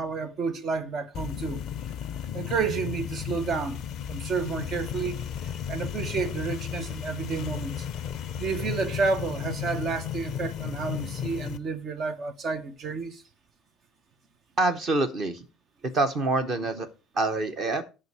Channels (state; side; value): normal; both; correlation 0.53